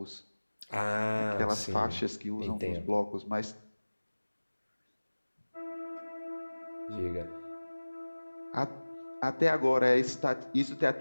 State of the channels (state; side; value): inverted; both; correlation -1.00